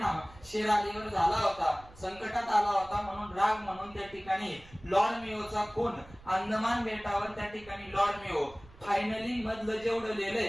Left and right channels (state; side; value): noise; right; rumble, 22 dB below the sound